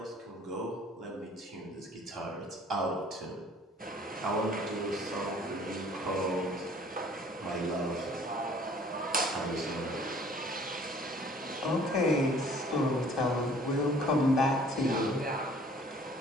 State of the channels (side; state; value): both; normal; correlation 0.54